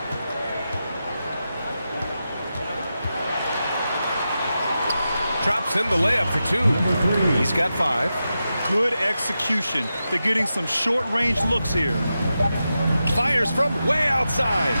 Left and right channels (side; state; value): both; inverted; correlation -0.90